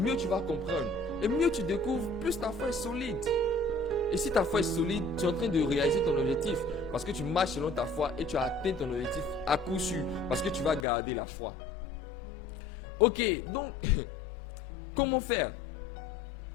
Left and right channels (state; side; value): drops out; right; at 10.9 s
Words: tu vas comprendre. Et mieux tu découvres, plus ta foi est solide. Et si ta foi est solide, tu es en train de réaliser ton objectif. Parce que tu marches selon ta foi et tu as atteint ton objectif à coup sûr. Parce que tu vas garder la foi. Ok, donc, comment faire?